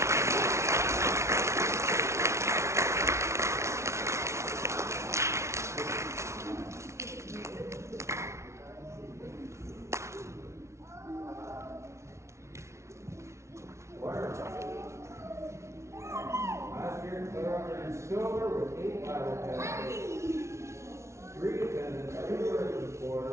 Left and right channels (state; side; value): late; left; 0.13 ms